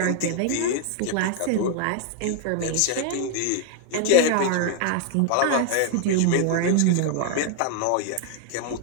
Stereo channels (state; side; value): different; both; correlation 0.00